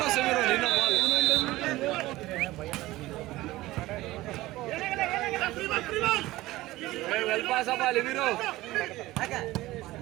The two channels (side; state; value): left; quieter; 17.9 dB